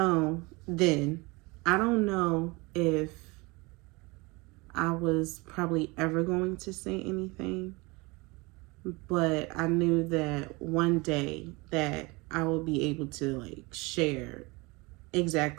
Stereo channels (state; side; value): quieter; left; 25.2 dB